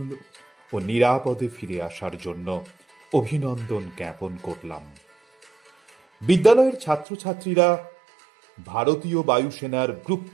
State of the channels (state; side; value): drops out; left; at 7.1 s